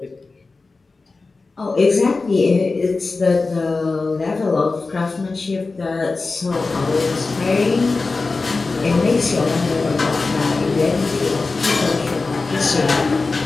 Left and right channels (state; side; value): quieter; right; 3.8 dB